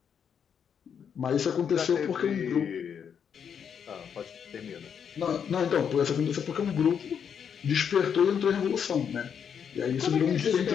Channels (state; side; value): quieter; right; 7.6 dB